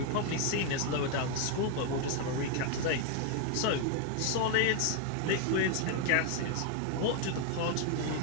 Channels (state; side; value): different; both; correlation 0.01